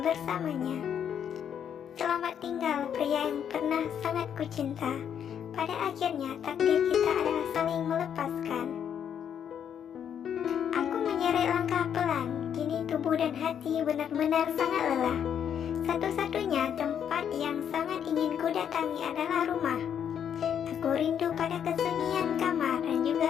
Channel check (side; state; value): right; quieter; 8.6 dB